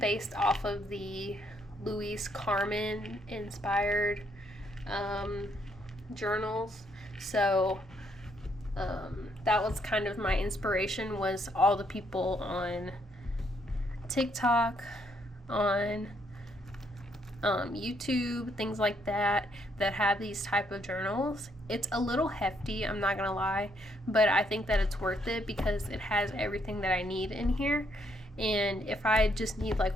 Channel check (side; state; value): both; normal; correlation 0.72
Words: off of the Louise Carmen inspired journals. So that was kind of my inspiration, was all the people on TikTok, on YouTube, things like that have these type of journals. It's a little hefty, I'm not gonna lie, but I think that it's worth it because it has everything that I need in here. And if I just need